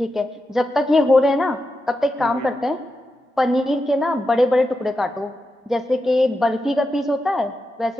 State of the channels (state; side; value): normal; both; correlation 0.88